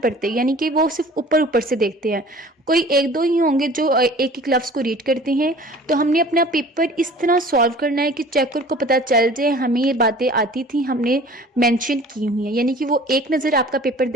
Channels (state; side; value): normal; both; correlation 0.46